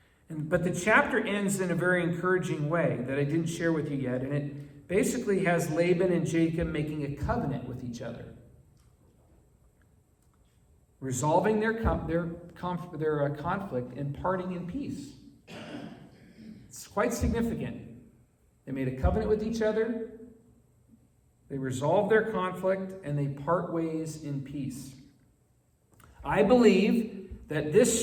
But the chapter ends in a very encouraging way that I didn't share with you yet. And it basically has Laban and Jacob making a covenant with each other, resolving their conflict and parting in peace. It's quite significant. They made a covenant with each other, they resolved their conflict, and they part ways in peace. I believe that this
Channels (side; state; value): both; identical; correlation 1.00